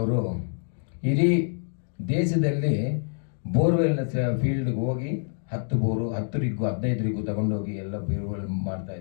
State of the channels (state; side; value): silent; right; digital silence